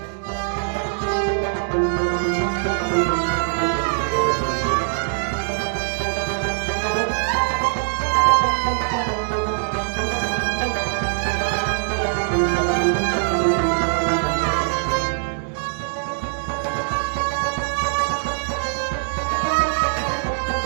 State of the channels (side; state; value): left; silent; digital silence